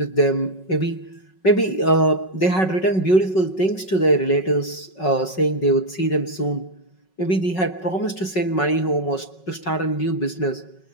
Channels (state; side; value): late; right; 5.4 ms